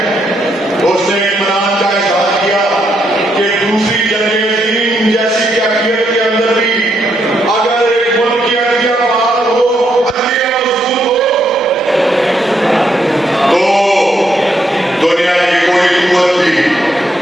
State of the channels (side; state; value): both; normal; correlation 0.77